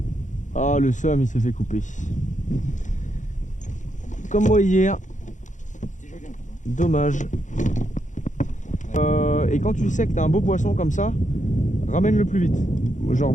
Ah, le somme, il s'est fait couper. Comme moi hier. C'était joli un peu. Dommage. Et quand tu sais que t'as un beau poisson comme ça, ramène-le plus vite. Genre,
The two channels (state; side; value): late; right; 0.36 ms